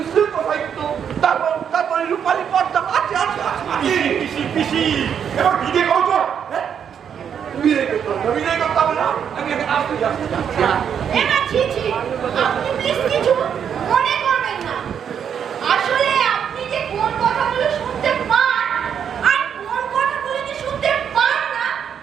শিল্প সাহিত্য তারপর রূপালী পর্দা আছে আছে আছে পিসি পিসি এবার বিদে করো তো। হ্যাঁ বিদায় করতে হবে না আমি এখানে আসতে যাচ্ছি এবার ছি ছি, আপনি প্লিজ কিছু মনে করবেন না। আসলে আপনি যে কোন কথাগুলো শুনতে পান আর কোন কথাগুলো যে শুনতে পান না,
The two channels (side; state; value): left; quieter; 8.0 dB